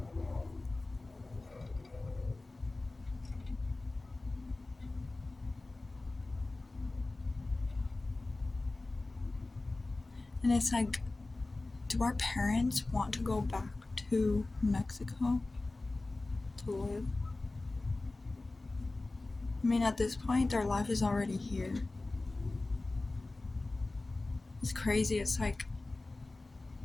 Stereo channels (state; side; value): quieter; right; 3.1 dB